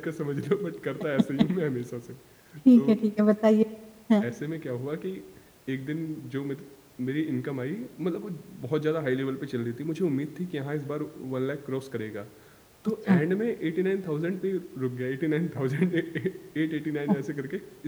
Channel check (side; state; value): both; identical; correlation 1.00